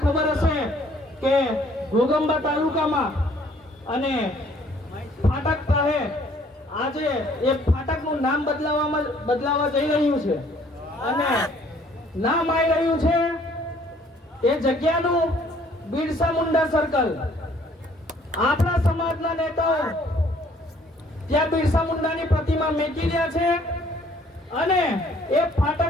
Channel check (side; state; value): both; normal; correlation 0.60